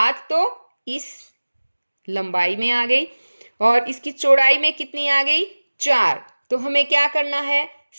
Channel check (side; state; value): both; inverted; correlation -1.00